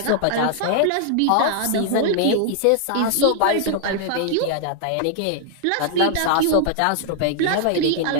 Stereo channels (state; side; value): different; both; correlation -0.01